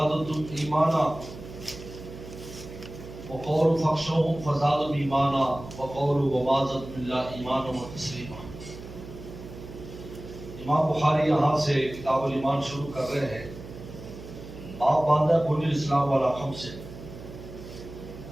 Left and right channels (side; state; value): right; noise; hum, 14 dB below the sound